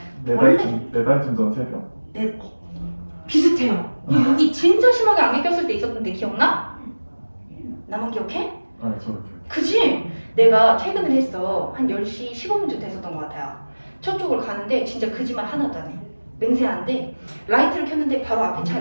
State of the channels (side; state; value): both; inverted; correlation -1.00